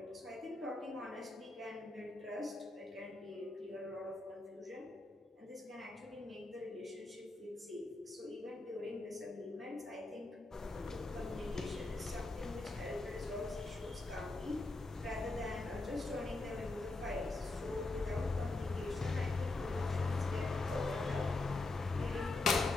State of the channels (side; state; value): right; quieter; 3.1 dB